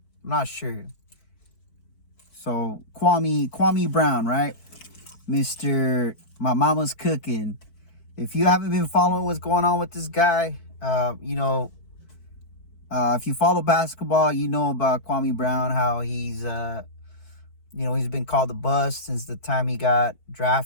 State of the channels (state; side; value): late; right; 4.5 ms